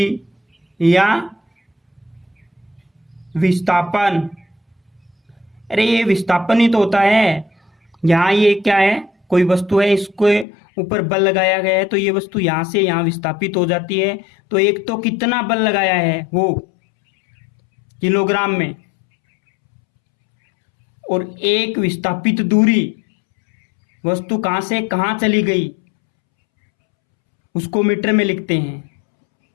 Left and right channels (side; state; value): right; drops out; at 10.5 s